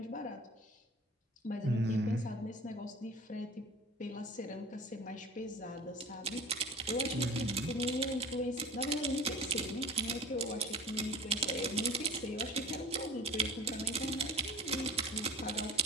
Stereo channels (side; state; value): both; normal; correlation 0.39